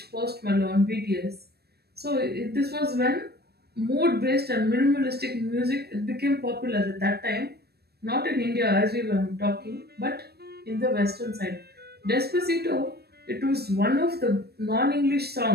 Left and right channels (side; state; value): left; late; 0.47 ms